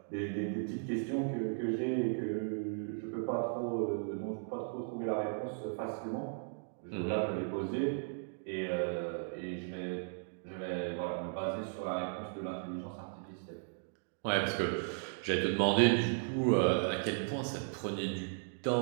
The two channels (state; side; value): silent; left; digital silence